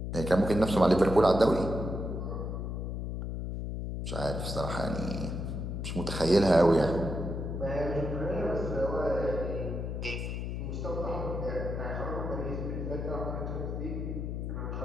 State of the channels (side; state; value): left; noise; hum, 4 dB below the sound